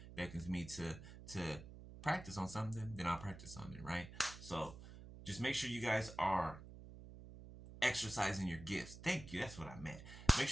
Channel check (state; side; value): noise; right; hum, 14 dB below the sound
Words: beckons me to practice on something, then I'll practice on it, right? So just make sure you guys are exercising your gifts. Thank you. That's what I meant. Make